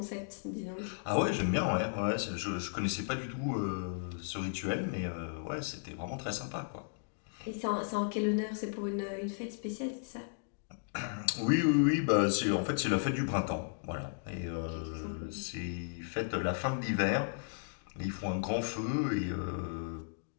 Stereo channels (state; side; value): silent; right; digital silence